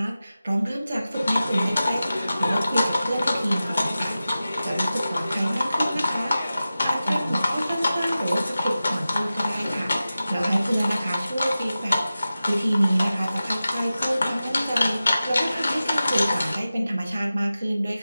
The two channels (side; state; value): both; inverted; correlation -0.94